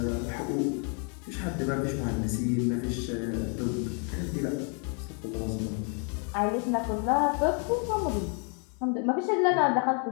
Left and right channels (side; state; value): right; quieter; 39.3 dB